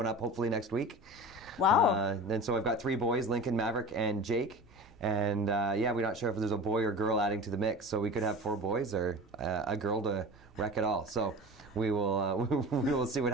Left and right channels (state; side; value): normal; both; correlation 0.35